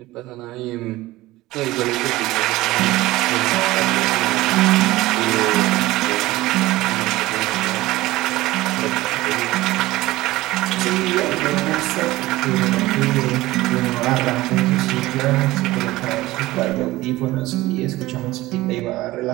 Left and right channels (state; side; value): quieter; left; 18.1 dB